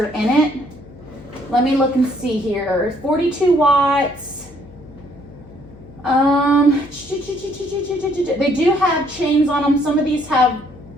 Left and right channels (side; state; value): left; noise; hum, 20 dB below the sound